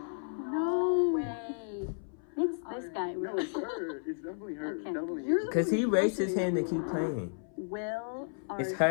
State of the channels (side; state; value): right; silent; 56 dB below the other